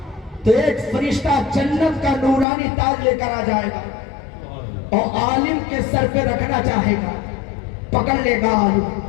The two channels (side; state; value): right; drops out; at 2.5 s